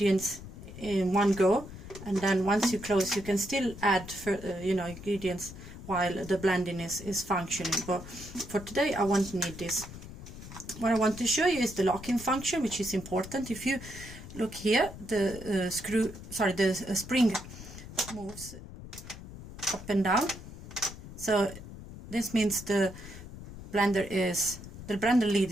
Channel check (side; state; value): left; noise; rumble, 13 dB below the sound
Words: in one go, and then once you close you can still add ingredients while the blending is functioning. But for today I won't need this. What I want to show you is the locking function, which is important. If you look here, the spring moves up and down. So this means the blender